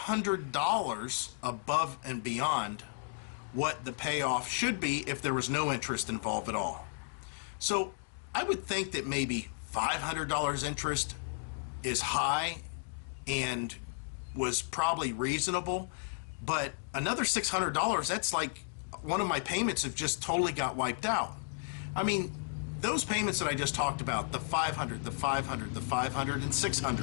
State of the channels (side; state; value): right; silent; digital silence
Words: above and beyond what the payoff should be if there was no interest involved at all. So I would think that maybe $500 interest is high and was probably reasonable, but another $600, that's like one of my payments have just totally got wiped out. I mean, those payments that I just talked about, the 500, the 500, the 500, and